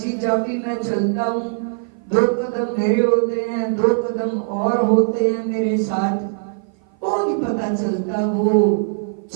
जब भी मैं चलता हूँ 2 कदम मेरे होते हैं, 2 कदम और होते हैं मेरे साथ, वो नहीं पता चलता। वो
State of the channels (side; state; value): left; silent; 55 dB below the other